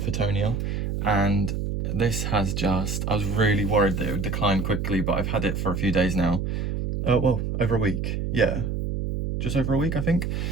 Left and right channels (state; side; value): noise; right; hum, 2 dB below the sound